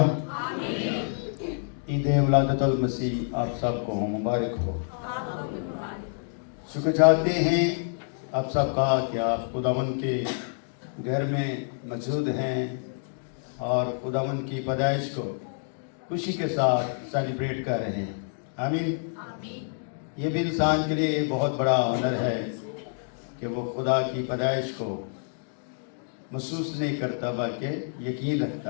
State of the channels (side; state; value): right; silent; digital silence